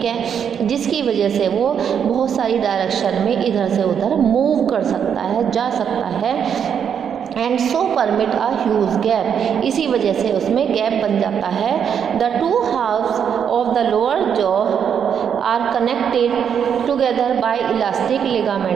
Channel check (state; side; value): quieter; left; 7.9 dB